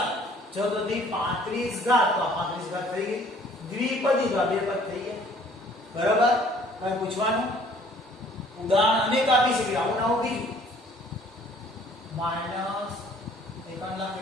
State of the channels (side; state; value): both; normal; correlation 0.56